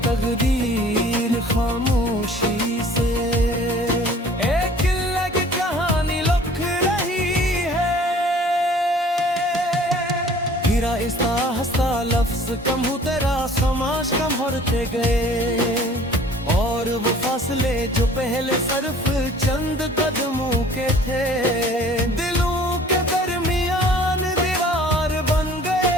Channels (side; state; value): both; normal; correlation 0.51